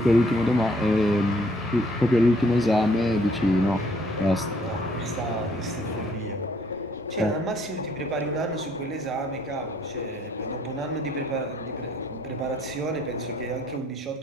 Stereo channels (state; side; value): normal; both; correlation 0.64